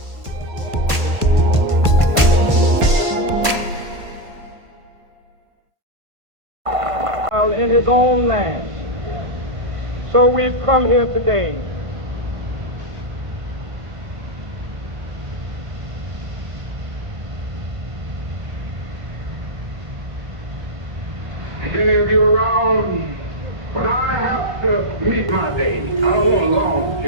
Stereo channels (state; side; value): late; left; 1.5 ms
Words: In his own land. So we've come here today many of you around, when I have to meet my day, I don't want a long